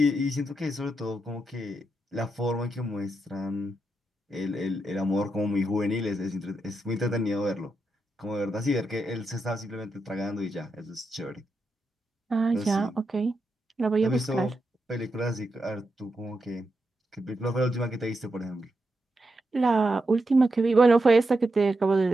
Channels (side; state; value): both; normal; correlation 0.85